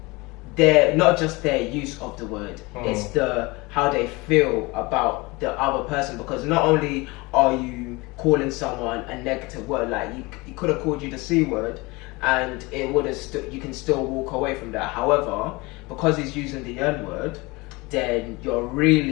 they're not just their use of the word; it's how they feel about the other person. Because not only are you calling someone a negative word, like he could have called you the C word, and it would have you can still walk away from that. However, because he's using the N word, then you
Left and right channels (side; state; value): right; quieter; 24.2 dB